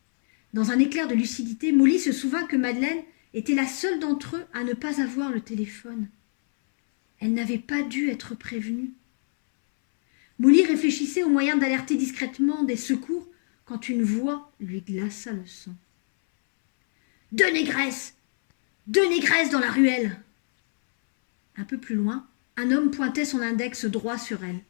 Dans un éclair de lucidité, Molly se souvint que Madeleine était la seule d'entre eux à ne pas avoir le téléphone. Elle n'avait pas dû être prévenue. Molly réfléchissait au moyen d'alerter discrètement des secours quand une voix lui glaça le sang. « Deux négresses dans la ruelle !» Un peu plus loin, un homme pointait son index droit sur elle.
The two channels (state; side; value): silent; right; 62 dB below the other